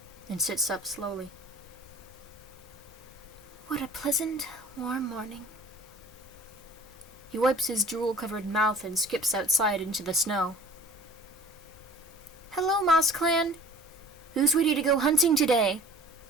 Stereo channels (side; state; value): both; normal; correlation 0.45